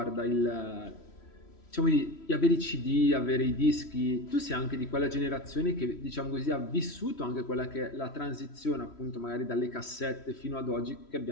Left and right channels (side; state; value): right; late; 3.1 ms